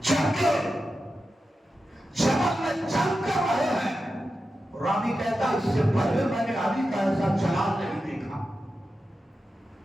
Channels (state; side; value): normal; both; correlation 0.91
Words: جبل میں جنگ کر رہے ہیں، راوی کہتا اس سے پہلے میں نے علی کا ایسا جلال نہیں دیکھا،